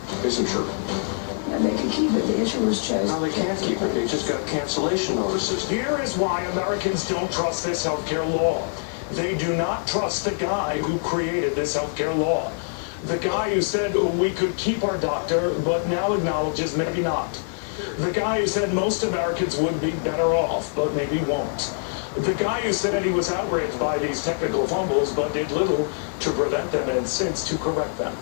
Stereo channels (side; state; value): right; silent; digital silence